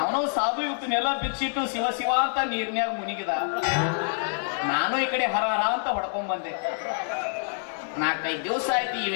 ಸಾಧು ಇವತ್ತನ್ನೆಲ್ಲ ಬಿಚ್ಚಿಟ್ಟು ಶಿವ ಶಿವ ಅಂತ ನೀರ್ನ್ಯಾಗ ಮುನಿಗಿದ. ನಾನು ಈ ಕಡೆ ಹರ ಹರ ಅಂತ ಹೊಡ್ಕೊಂಡ್ ಬಂದೆ. 4-5 ದಿವಸ ಆಯ್ತು ಈ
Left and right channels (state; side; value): silent; right; digital silence